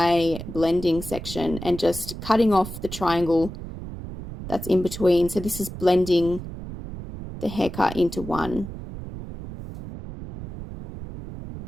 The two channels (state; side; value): noise; right; rumble, 10 dB below the sound